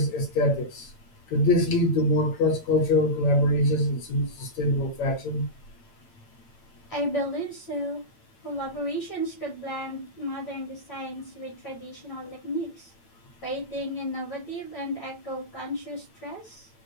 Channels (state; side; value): late; right; 8.9 ms